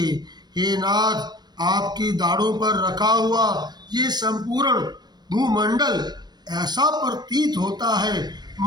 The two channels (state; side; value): late; left; 0.20 ms